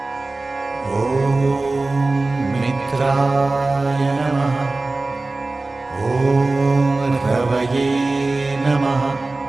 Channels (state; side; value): quieter; left; 3.3 dB